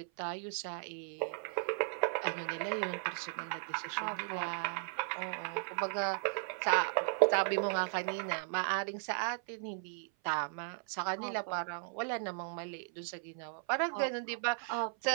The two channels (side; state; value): left; silent; 54 dB below the other